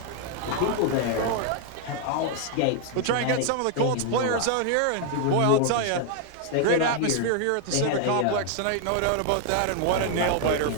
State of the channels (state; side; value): different; both; correlation 0.00